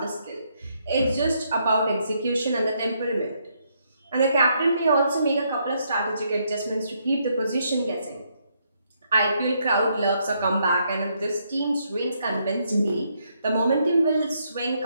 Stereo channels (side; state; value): both; inverted; correlation -0.75